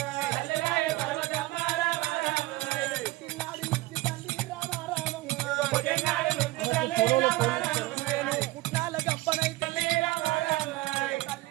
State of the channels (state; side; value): quieter; left; 19.5 dB